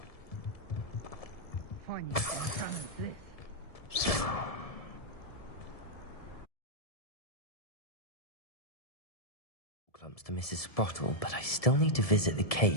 Fine, you can this. Clumps to Mrs. Sprottle, but I still need to visit the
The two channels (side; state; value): right; late; 1.7 ms